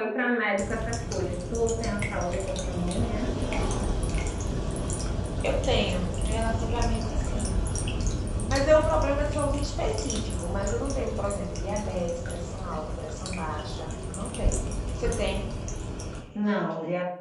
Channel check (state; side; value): identical; both; correlation 1.00